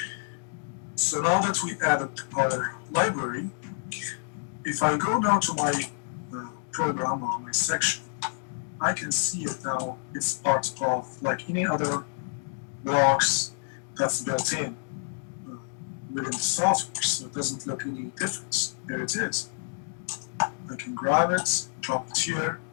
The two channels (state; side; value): silent; right; digital silence